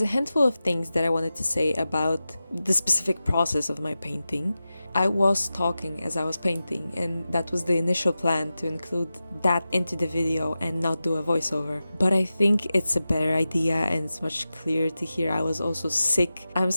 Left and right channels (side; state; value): both; inverted; correlation -0.94